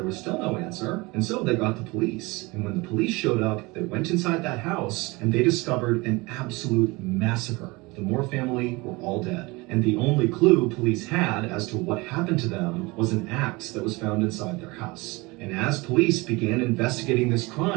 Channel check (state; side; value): quieter; left; 24.1 dB